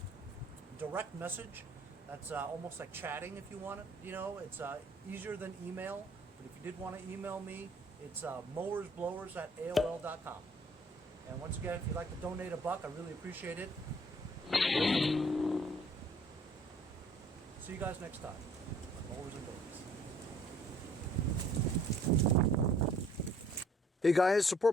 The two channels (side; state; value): both; normal; correlation 0.59